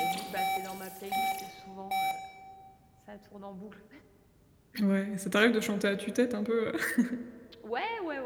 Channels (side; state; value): both; identical; correlation 1.00